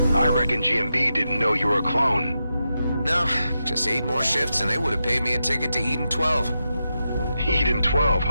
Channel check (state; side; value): inverted; both; correlation -0.88